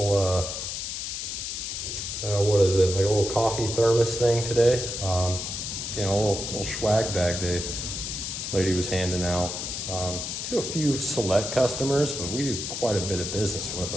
what is it? Like a little coffee thermos thing today. You know, a little swag bag the lady was handing out to a few select customers, but we do quite a bit of business with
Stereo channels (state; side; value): noise; left; hiss, 4 dB below the sound